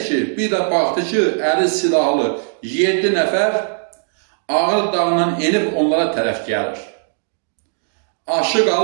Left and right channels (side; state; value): left; silent; 65 dB below the other